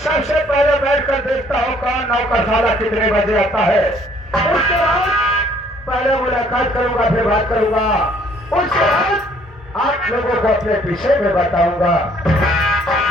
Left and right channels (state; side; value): normal; both; correlation 0.61